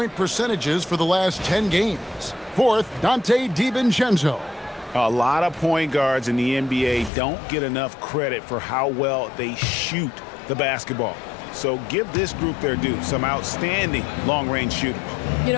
percentages for the last 10 games. Fourth, Dante DiVincenzo. A lot of point guards in the NBA don't get enough credit for how well they shoot the basketball. So give this group their due. Some outstanding long-range shooters. You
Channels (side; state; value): right; drops out; at 7.1 s